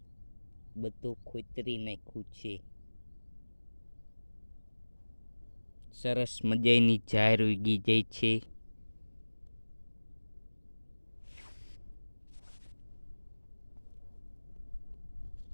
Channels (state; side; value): inverted; both; correlation -1.00